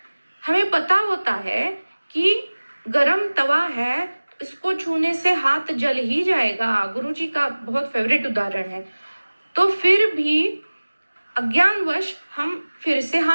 हमें पता होता है कि गरम तवा है, इसको छूने से हाथ जल ही जाएगा, गुरुजी का बहुत फेवरेट उदाहरण है। तो फिर भी अज्ञानवश हम फिर से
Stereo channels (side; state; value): both; inverted; correlation -1.00